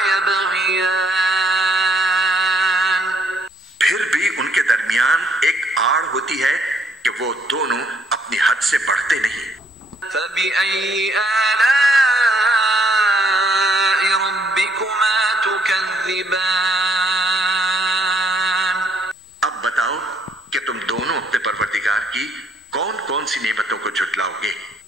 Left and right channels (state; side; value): normal; both; correlation 0.68